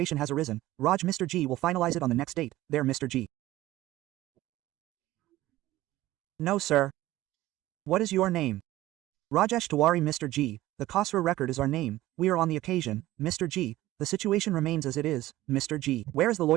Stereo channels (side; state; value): left; quieter; 16.2 dB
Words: has arisen. Raj Mr. G will finalize it on the next date. There Mr. G. No sir. What is your name? Rajesh Tiwari Mr. G, the Khosrow record is our name, we are on the occasion, Mr. G, the situation remains as it is, Mr. G. Where is the